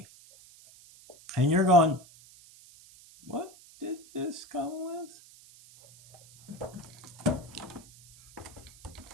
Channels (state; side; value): noise; right; hiss, 22 dB below the sound